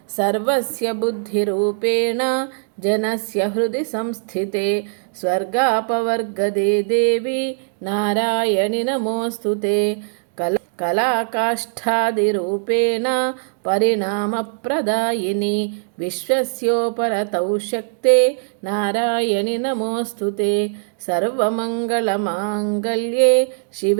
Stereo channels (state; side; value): silent; left; digital silence